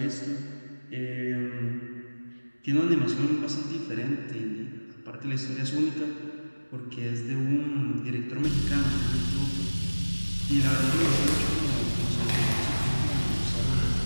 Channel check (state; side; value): inverted; both; correlation -1.00